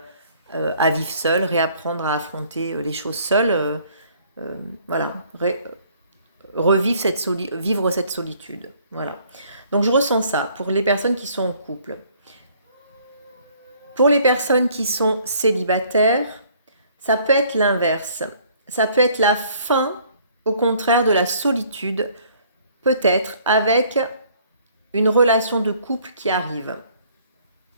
vivre seul, réapprendre à affronter les choses seul. Vivre cette solitude. Voilà. Donc je ressens ça pour les personnes qui sont en couple. Pour les personnes qui sont célibataires, ça peut être l'inverse. Ça peut être la fin, au contraire, de la solitude, peut-être avec une relation de couple qui arrive.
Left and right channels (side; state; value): both; inverted; correlation -0.60